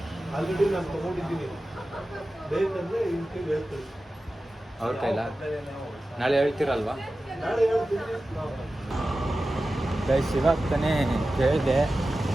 ಆಲ್ರೆಡಿ ನಾನು ತಗೊಂಡಿದ್ದೀನಿ. ಬೇಕಂದ್ರೆ ಇನ್ಕೆ ಹೇಳ್ತೀನಿ. ಅವ್ರ ಕೈಲ ನಾಳೆ ಹೇಳ್ತೀರಲ್ವಾ? ನಾಳೆ ಹೇಳ್ತೀನಿ. ಗೈಸ್, ಇವಾಗ ತಾನೇ ಕೇಳಿದೆ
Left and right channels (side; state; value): both; normal; correlation 0.94